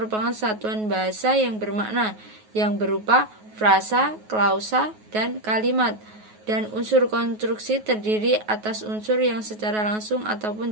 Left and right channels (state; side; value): late; left; 9.3 ms